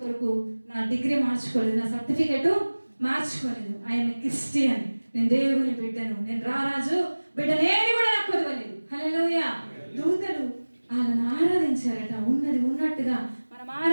కొరకు నా డిగ్రీ మార్చుకోలేదు, నా సర్టిఫికెట్ మార్చుకోలేదు. ఐఎమ్ క్రిస్టియన్, నేను దేవుని బిడ్డను, నేను రారాజు బిడ్డనేది కూడా నాకు కుదవలేదు. హల్లెలూయా. దూతలు వాళ్ళని ఆరాధించారట. ఉన్నది ఉన్నట్టుగా మనం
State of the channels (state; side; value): inverted; both; correlation -1.00